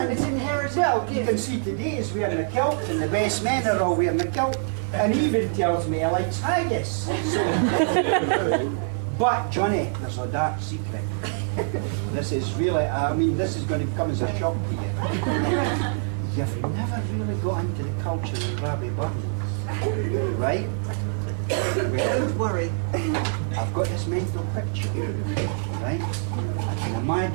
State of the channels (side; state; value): left; silent; digital silence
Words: me. It's inherited. Well, you can see today he's wearing a kilt, and the best men are all wearing a kilt, and he even tells me he likes haggis. So, but Johnny, there's a dark secret. This is really, I mean, this is going to come as a shock to you. You've never really got into the culture of Rabbie Buttons, right? Well, Don't worry. I've got this mental picture, right? I can